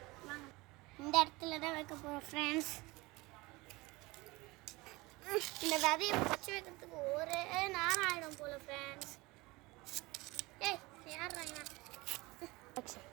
வாங்க, இந்த இடத்துல தான் வைக்க போகிறோம் ஃப்ரெண்ட்ஸ். இந்த விதையை பச்சை வைக்கிறதுக்கு ஒரு நேரம் ஆகிடும் போல் ஃப்ரெண்ட்ஸ். யாருறாங்க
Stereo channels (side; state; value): left; quieter; 22.5 dB